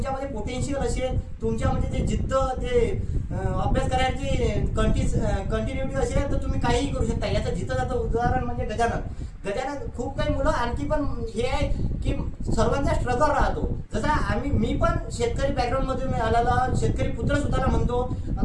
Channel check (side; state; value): both; identical; correlation 1.00